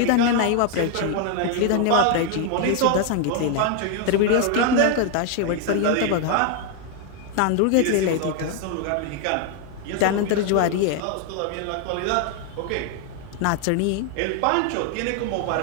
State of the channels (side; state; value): both; different; correlation 0.01